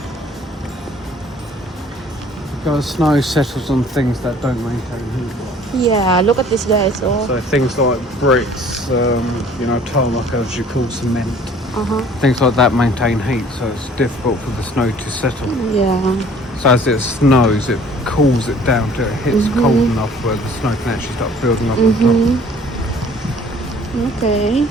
Because snow settles on things that don't maintain heat. Yeah, look at this, guys. Oh. So things like bricks, tarmac, as you call cement, things like that maintain heat, so it's difficult for the snow to settle. Yeah. So as it snows, it cools it down till it hits cold enough where the snow can actually start building up on top. Okay.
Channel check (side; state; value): both; normal; correlation 0.53